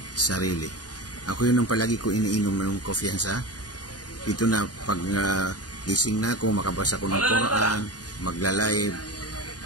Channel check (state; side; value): late; right; 0.69 ms